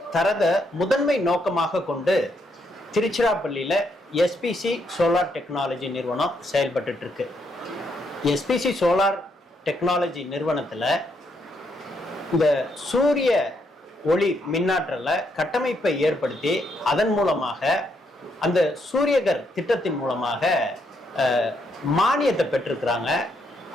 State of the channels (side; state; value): both; normal; correlation 0.76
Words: தரத முதன்மை நோக்கமாக கொண்டு திருச்சிராப்பள்ளியில் எஸ்பிசி சோலார் டெக்னாலஜி நிறுவனம் செயல்பட்டு இருக்கு. எஸ்பிசி சோலார் டெக்னாலஜி நிறுவனத்தில் இந்த சூரிய ஒளி மின்னாற்றலை கட்டமைப்பை ஏற்படுத்தி அதன் மூலமாக அந்த சூரியகர் திட்டத்தின் மூலமாக மானியத்தை பெற்றிருக்கிறாங்க.